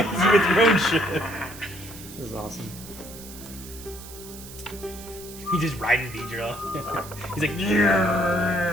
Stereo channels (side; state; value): right; noise; hiss, 15 dB below the sound